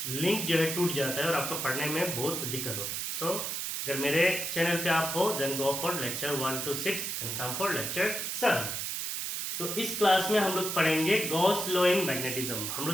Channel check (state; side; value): noise; right; hiss, 3 dB below the sound